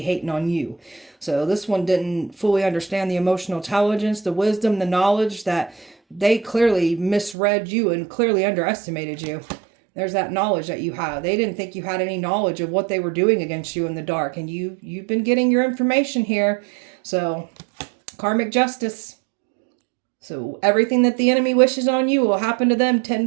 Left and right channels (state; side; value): drops out; left; at 7.4 s